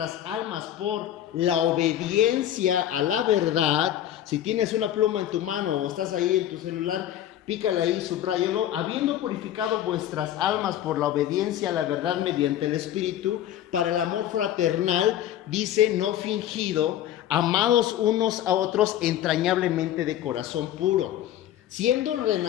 almas por la obediencia a la verdad. Si tienes una pluma en tu mano o estás ahí en tu celular, pícale ahí, subráyalo. Habiendo purificado vuestras almas por la obediencia a la verdad mediante el Espíritu, para el amor fraternal, dice, no fingido, amados unos a otros entrañablemente de corazón puro, siendo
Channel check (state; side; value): quieter; right; 11.6 dB